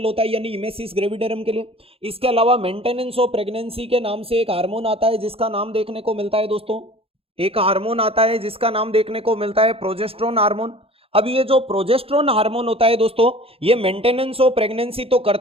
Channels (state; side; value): late; left; 0.28 ms